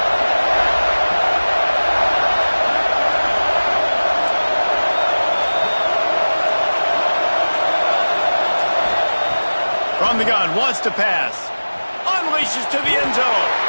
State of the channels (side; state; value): both; inverted; correlation -1.00